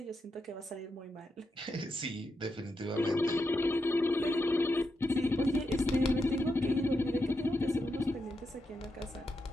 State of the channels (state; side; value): normal; both; correlation 0.85